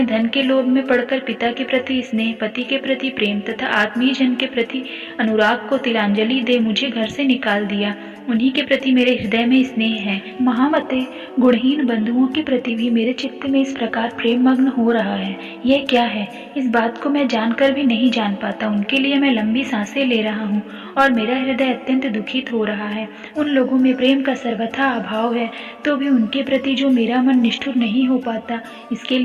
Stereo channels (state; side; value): identical; both; correlation 1.00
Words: धन के लोभ में पड़कर पिता के प्रति स्नेह, पति के प्रति प्रेम तथा आत्मीय जन के प्रति अनुराग को तिलांजलि दे मुझे घर से निकाल दिया, उन्हीं के प्रति मेरे हृदय में स्नेह है। महामते, गुणहीन बंधुओं के प्रति भी मेरे चित्त में इस प्रकार प्रेम मग्न हो रहा है। यह क्या है? इस बात को मैं जानकर भी नहीं जान पाता। उनके लिए मैं लंबी सांसें ले रहा हूँ और मेरा हृदय अत्यंत दुखित हो रहा है। उन लोगों में प्रेम का सर्वथा अभाव है, तो भी उनके प्रति जो मेरा मन निष्ठुर नहीं हो पाता, इसके